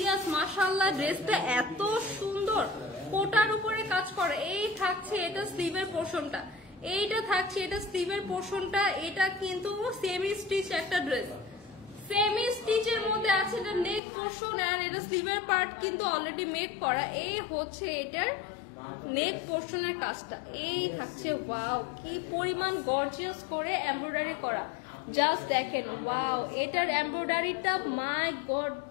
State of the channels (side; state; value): right; drops out; at 14.0 s